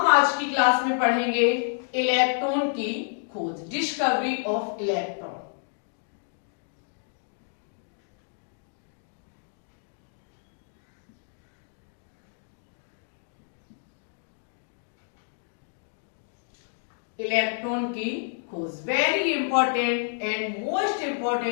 आज की क्लास में पढ़ेंगे इलेक्ट्रॉन की खोज, डिस्कवरी ऑफ इलेक्ट्रॉन। इलेक्ट्रॉन की खोज very important and most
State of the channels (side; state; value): right; silent; digital silence